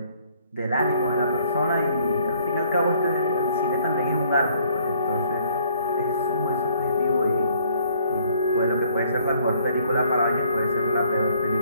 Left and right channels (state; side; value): inverted; both; correlation -0.62